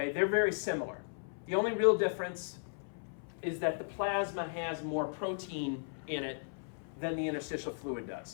They're very similar. The only real difference is that the plasma has more protein in it than the interstitial fluid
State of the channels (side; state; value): right; silent; 54 dB below the other